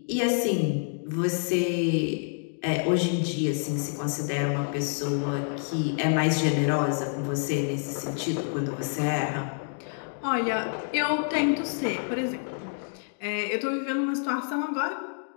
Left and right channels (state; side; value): silent; right; 60 dB below the other